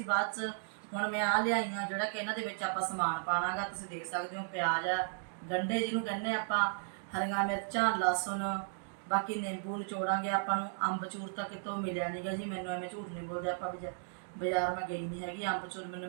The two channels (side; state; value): left; silent; digital silence